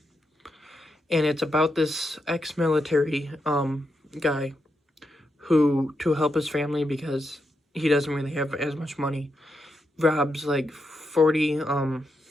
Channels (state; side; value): normal; both; correlation 0.84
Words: and it's about this ex-military guy who, to help his family because he doesn't really have as much money, robs like